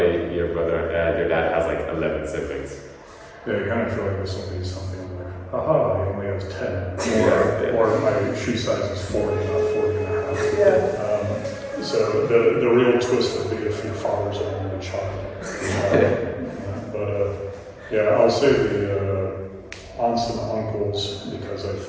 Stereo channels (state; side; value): identical; both; correlation 1.00